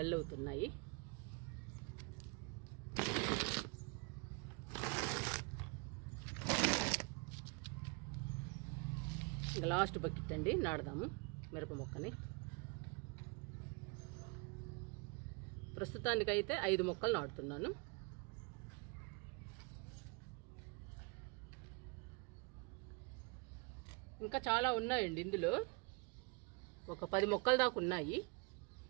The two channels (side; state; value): left; quieter; 30.7 dB